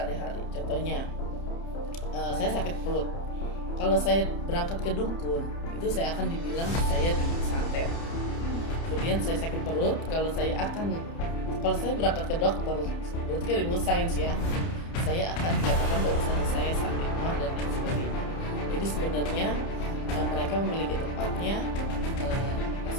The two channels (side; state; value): right; late; 30 ms